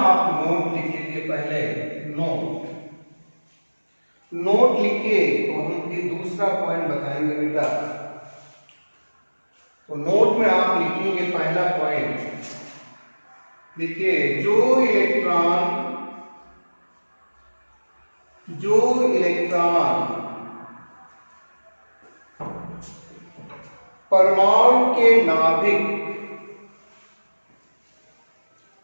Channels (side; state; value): both; inverted; correlation -1.00